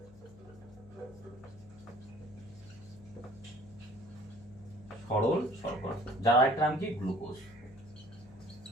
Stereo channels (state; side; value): noise; left; hum, 21 dB below the sound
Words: সরল শর্করা, যার আরেকটা নাম কি গ্লুকোজ।